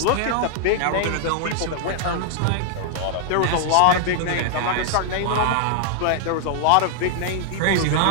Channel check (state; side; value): different; both; correlation 0.00